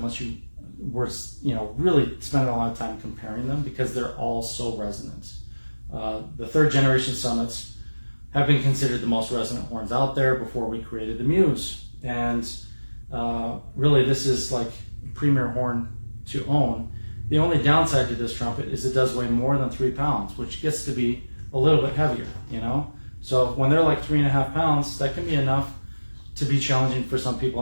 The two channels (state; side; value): inverted; both; correlation -1.00